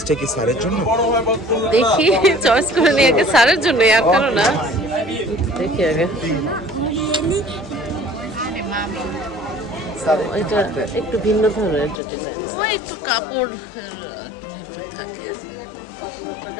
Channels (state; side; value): drops out; right; at 12.0 s